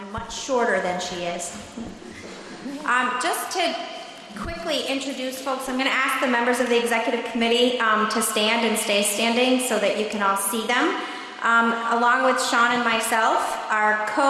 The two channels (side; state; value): both; identical; correlation 1.00